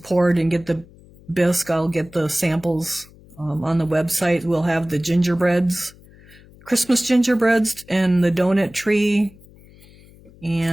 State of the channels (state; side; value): noise; left; hum, 24 dB below the sound